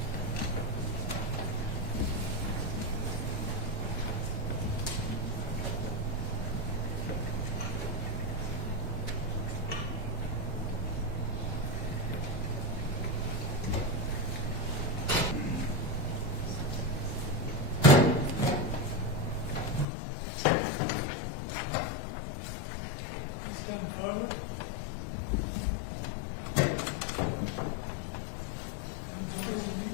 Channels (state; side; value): drops out; right; at 19.9 s